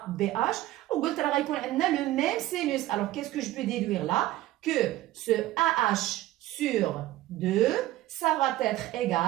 وقلت راه غيكون عندنا le même sinus. Alors qu'est-ce que je peux déduire là? Que ce AH sur 2 ça va être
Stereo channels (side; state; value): left; quieter; 15.7 dB